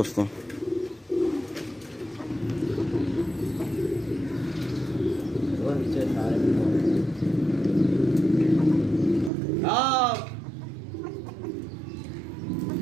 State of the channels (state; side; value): drops out; left; at 9.3 s